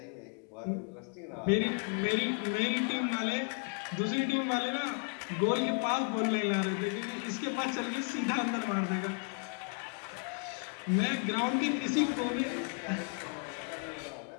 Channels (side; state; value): right; quieter; 38.4 dB